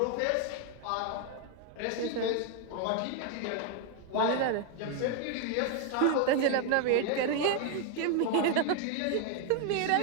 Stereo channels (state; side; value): different; both; correlation 0.00